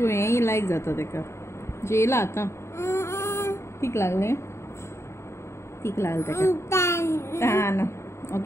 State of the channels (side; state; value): right; late; 0.13 ms